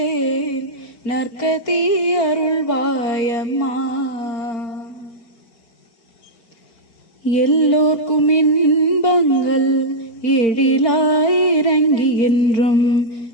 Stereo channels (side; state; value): right; late; 4.4 ms